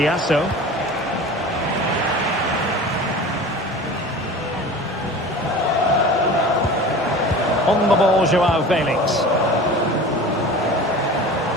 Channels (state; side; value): normal; both; correlation 0.37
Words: On the ball, Joao Felix.